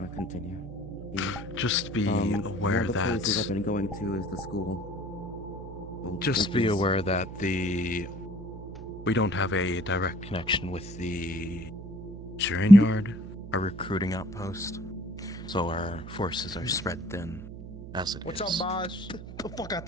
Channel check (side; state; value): right; noise; hum, 12 dB below the sound